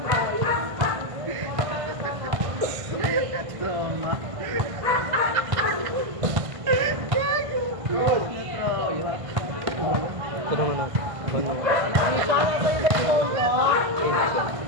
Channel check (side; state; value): left; late; 1.5 ms